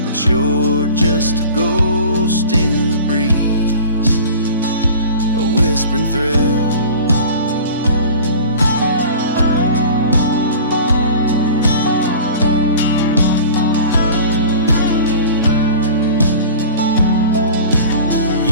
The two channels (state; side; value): inverted; both; correlation -0.40